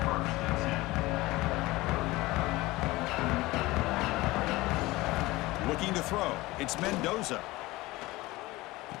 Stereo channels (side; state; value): right; quieter; 19.9 dB